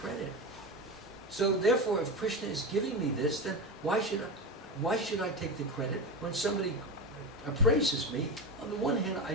So therefore, if Krishna is giving me this, then why should I take the credit when somebody praises me? On the one hand, I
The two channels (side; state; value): both; normal; correlation 0.21